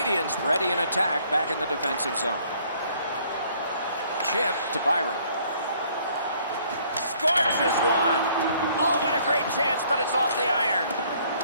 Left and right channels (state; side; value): inverted; both; correlation -0.61